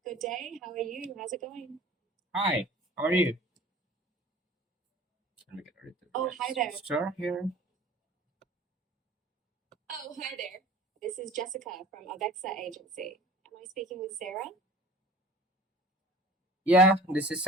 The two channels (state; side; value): normal; both; correlation 0.44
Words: Good day. How are you? How's it going? Hi, how are you? Let me get rid of the Oh, hi there. Sure, here. Oh, hi there. This is Jessica from Avexa Agency. Am I speaking with Sarah? Yeah, this is